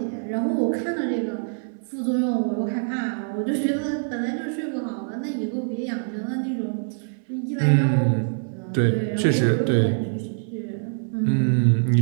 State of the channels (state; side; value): silent; left; digital silence